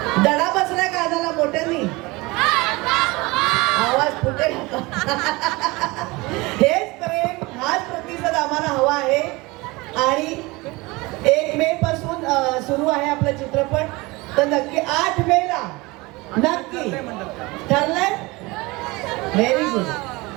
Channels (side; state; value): left; quieter; 23.2 dB